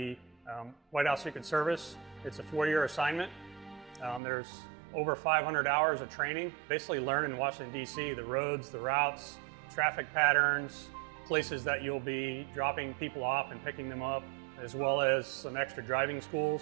White House Secret Service. It's a 4-year assignment. There's over 500 hours of training, basically learning in Washington, D.C., the roads, the routes, traffic patterns, places that you'll be dropping people off and picking them up, as well as some extra driving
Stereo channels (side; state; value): left; drops out; at 4.2 s